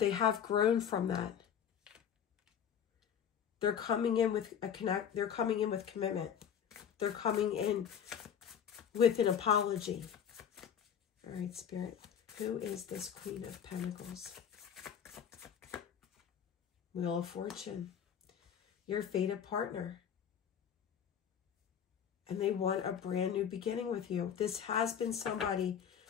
have grown from that. They're coming in with they're coming in with commitment. They're coming in with an apology. All right, Spirit. Who is this Queen of Pentacles? Wheel of Fortune. Your fated partner. And they want a brand new beginning with you. This has been somebody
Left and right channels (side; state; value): right; quieter; 8.3 dB